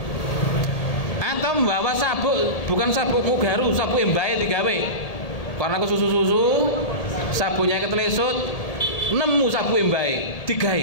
Atau membawa sabuk, bukan sabuk Mugaru, sabuk embae digawe. Karena kesusu-susu, sabunnya ketelesut, nemu sabuk embae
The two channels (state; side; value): late; right; 1.7 ms